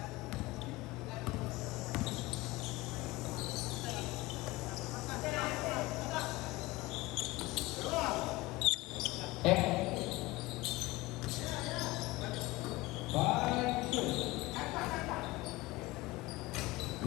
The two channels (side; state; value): right; quieter; 20.5 dB